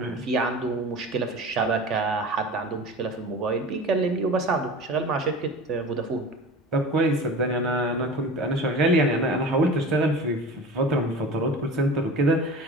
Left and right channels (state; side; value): normal; both; correlation 0.36